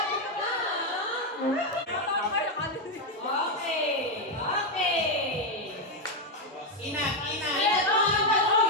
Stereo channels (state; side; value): normal; both; correlation 0.04